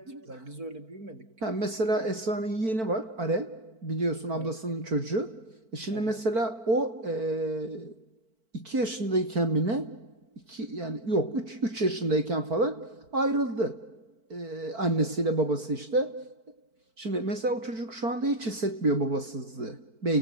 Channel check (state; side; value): late; left; 4.5 ms